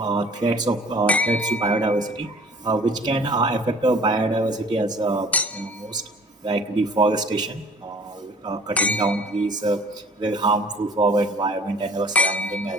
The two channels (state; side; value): normal; both; correlation 0.50